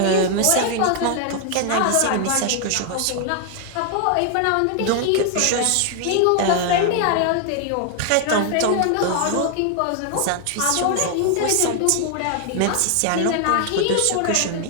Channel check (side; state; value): both; different; correlation 0.00